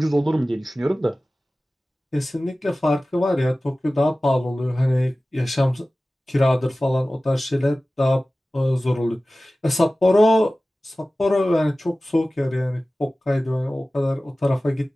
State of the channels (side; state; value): both; normal; correlation 0.97